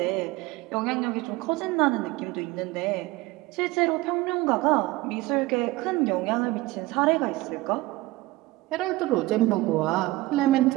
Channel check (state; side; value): quieter; left; 19.5 dB